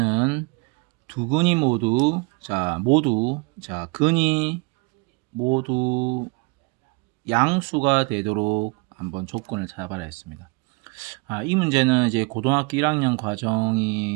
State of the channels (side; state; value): left; quieter; 28.8 dB